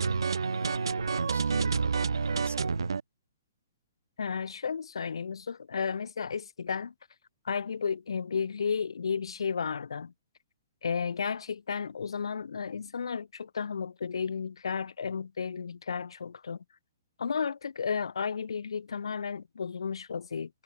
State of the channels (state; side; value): inverted; both; correlation -0.80